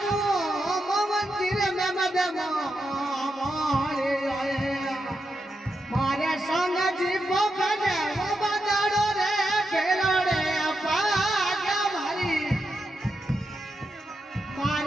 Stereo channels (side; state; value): both; normal; correlation 0.85